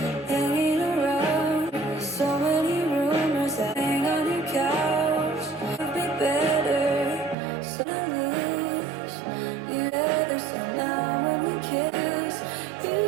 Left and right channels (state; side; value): drops out; left; at 7.4 s